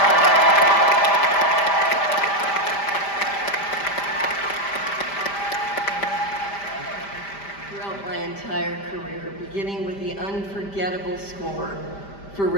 my entire career, beginning with the unforgettable score for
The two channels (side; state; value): right; late; 5.0 ms